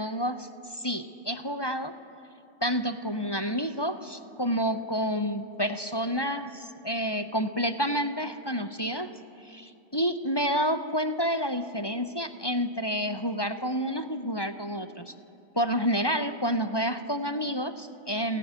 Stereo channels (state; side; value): late; right; 1.2 ms